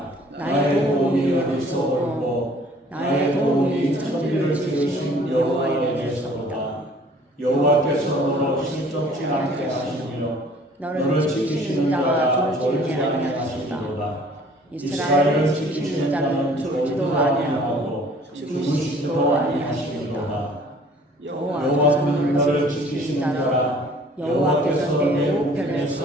나의 도움이 어디서 올고 나의 도움이 천지를 지으신 여호와에게서로다. 여호와께서 너를 실족지 않게 하시며 너를 지키시는 자가 졸지 아니하시리로다. 이스라엘을 지키시는 자는 졸지도 아니하고 주무시지도 아니하시리로다. 여호와는 너를 지키시는 자라. 여호와께서 내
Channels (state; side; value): normal; both; correlation 0.53